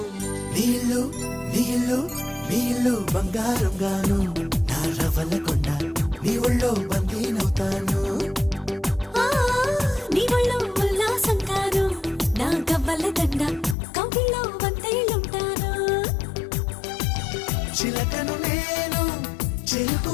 నీళ్ళు నీళ్ళు నీళ్ళు బంగారం గాను నా రవల కొండ నీ ఒళ్ళో బందీనవుతాను నీ ఒళ్ళో ఉల్లాసం కాను నా గవ్వల దండ కౌగిల్లో వంతైలుంటాను చిలకను నేను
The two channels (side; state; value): right; drops out; at 13.8 s